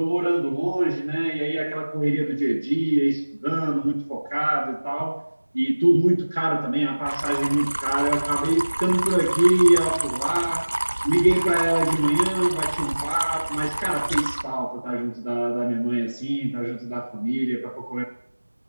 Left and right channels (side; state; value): both; inverted; correlation -1.00